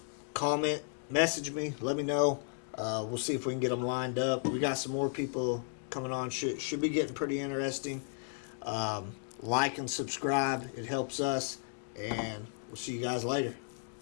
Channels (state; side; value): silent; right; 55 dB below the other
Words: comment, message me, let me know. We'll see if we can get them lined up. We got some more people coming on. Should be getting pretty interesting. Like and subscribe. It helps us. And we'll see you guys later.